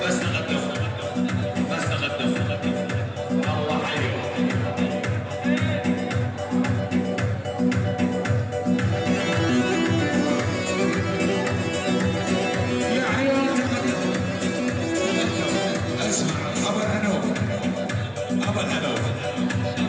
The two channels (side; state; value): both; identical; correlation 1.00